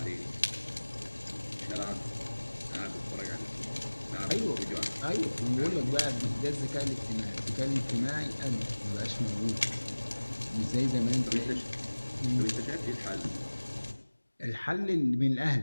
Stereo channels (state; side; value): inverted; both; correlation -1.00